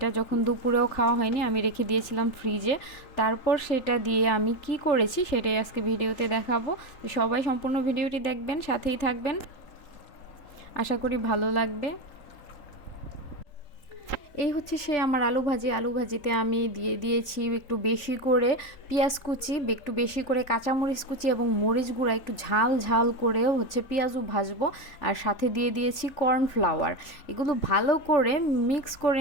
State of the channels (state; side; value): late; right; 3.8 ms